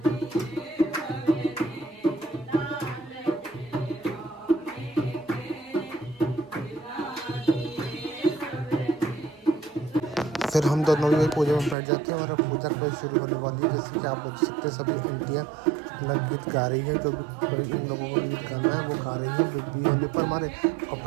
फिर हम दोनों भी पूजा में बैठ जाते हैं और अब पूजा कभी शुरू होने वाली है। जैसे कि आप लोग देख सकते हैं, सभी आंटियाँ अपना गीत गा रही है, जो भी इन लोगों को गीत गाना है वो गा रही है बीबी होने पर हमारे। और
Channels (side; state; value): left; drops out; at 11.8 s